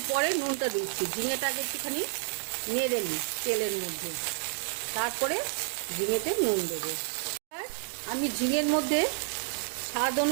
পরে নুনটা দিচ্ছি। ঝিঙেটা আগে একটুখানি নেড়ে নিই তেলের মধ্যে, তারপরে ঝিঙেতে নুন দেবো। আমি ঝিঙের মধ্যে স্বাদ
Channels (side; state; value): left; silent; digital silence